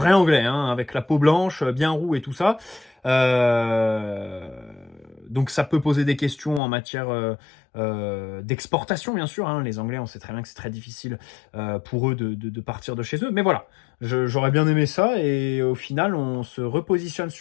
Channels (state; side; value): drops out; right; at 6.6 s